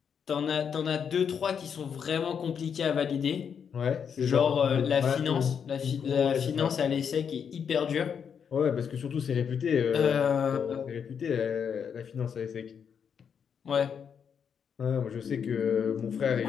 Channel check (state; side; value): quieter; right; 7.2 dB